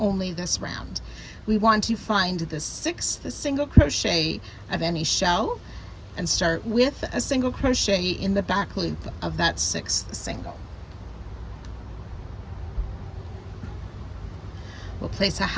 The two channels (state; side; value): identical; both; correlation 1.00